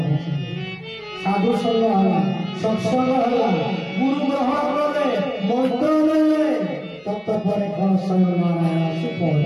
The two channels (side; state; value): both; identical; correlation 1.00